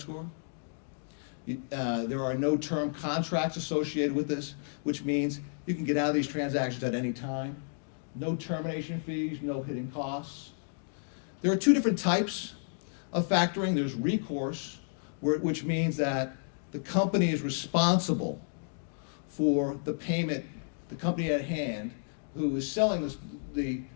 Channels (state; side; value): silent; right; digital silence